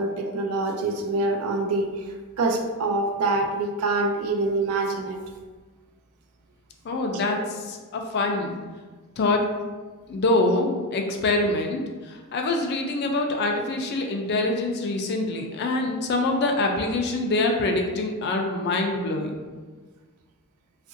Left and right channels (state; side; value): normal; both; correlation 0.10